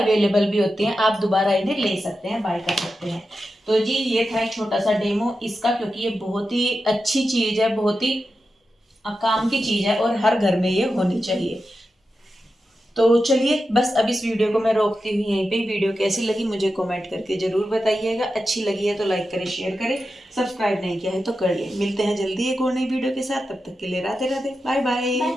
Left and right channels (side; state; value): both; normal; correlation 0.90